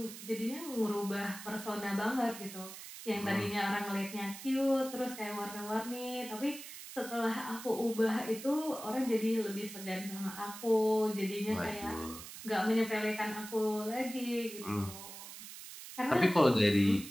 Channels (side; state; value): right; noise; hiss, 12 dB below the sound